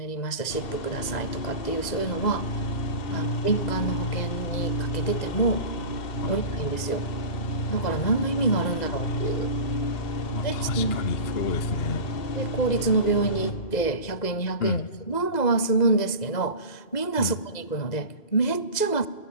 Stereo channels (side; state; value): right; late; 2.0 ms